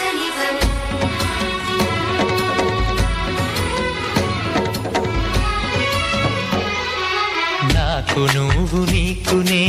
నాకు నువ్వు నీకు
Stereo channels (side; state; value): both; identical; correlation 1.00